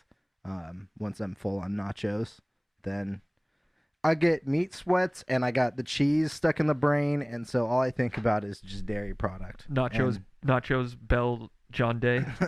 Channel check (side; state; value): both; identical; correlation 1.00